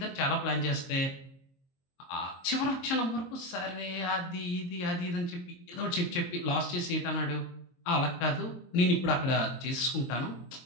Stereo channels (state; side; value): late; right; 22 ms